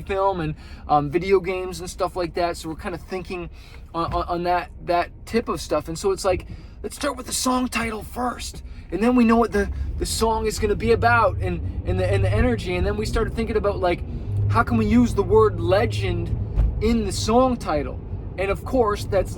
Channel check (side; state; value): both; identical; correlation 1.00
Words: film, and video games and stuff like that. So we're kind of thinking on that tip of stuff. And so it's let's start with the song title first. And then we know what the song is going to be about, and the energy. And then we started thinking about how can we use the word legend in the song title? And of course, that's